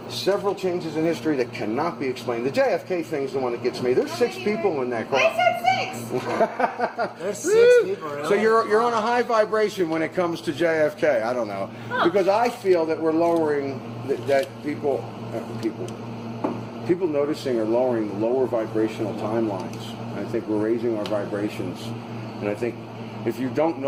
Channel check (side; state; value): both; identical; correlation 1.00